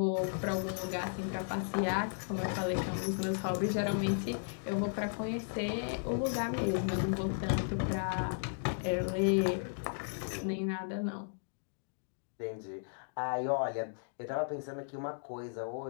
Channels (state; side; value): silent; right; digital silence